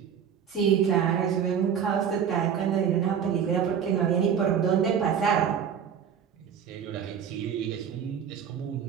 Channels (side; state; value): left; quieter; 8.0 dB